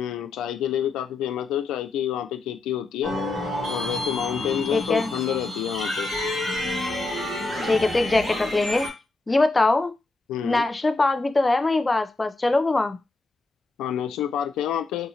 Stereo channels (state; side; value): quieter; right; 3.4 dB